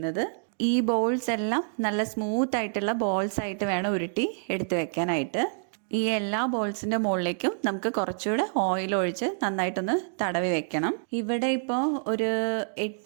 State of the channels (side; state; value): left; silent; digital silence